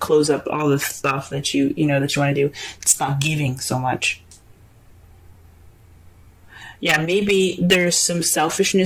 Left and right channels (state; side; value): identical; both; correlation 1.00